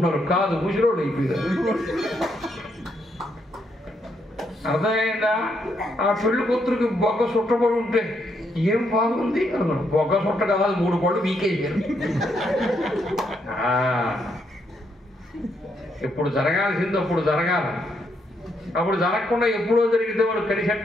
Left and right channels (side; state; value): both; normal; correlation 0.76